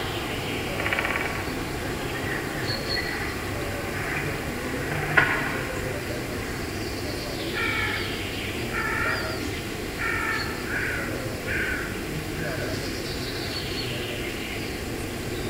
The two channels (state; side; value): identical; both; correlation 1.00